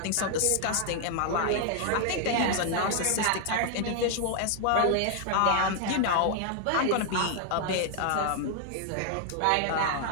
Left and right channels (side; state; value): both; different; correlation 0.00